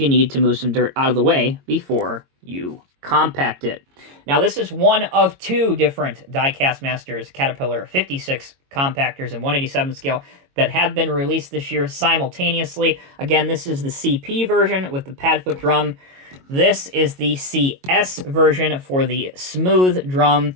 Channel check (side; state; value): left; late; 22 ms